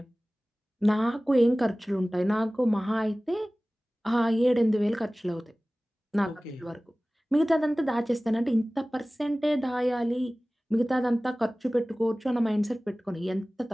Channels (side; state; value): both; normal; correlation 0.98